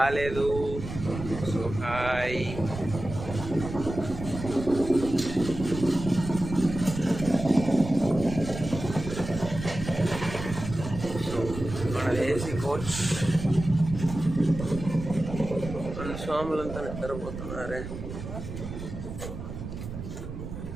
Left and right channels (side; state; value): right; noise; rumble, 8 dB below the sound